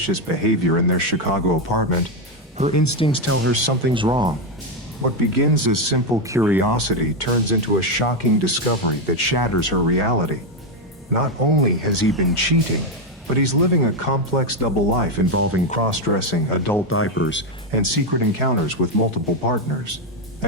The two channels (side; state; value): both; normal; correlation 0.06